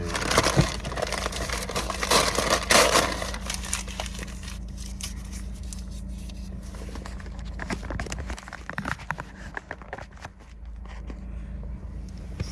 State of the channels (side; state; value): both; identical; correlation 1.00